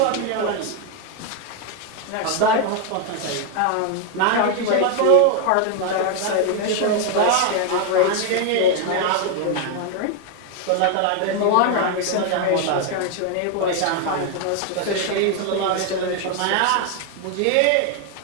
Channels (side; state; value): both; different; correlation 0.01